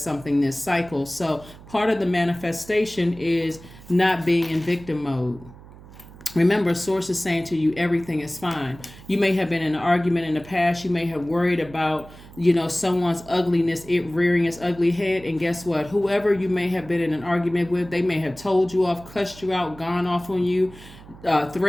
something this cycle. So part of the manifestation is not being in victim mode. Remember, source is saying to you, everything is fine. You may have been in an argument in the past. You may have worried about, someone's ugliness, it rearing its ugly head. And guess what? Whoever you may have been in an argument with, they may have told you off, cussed you out, gone off on you,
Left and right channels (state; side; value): noise; right; hum, 19 dB below the sound